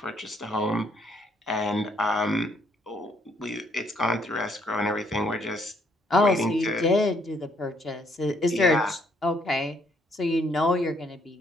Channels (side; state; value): both; normal; correlation 0.68